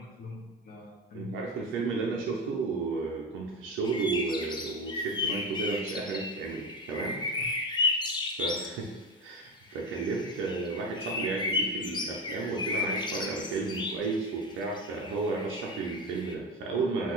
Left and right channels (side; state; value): both; normal; correlation 0.19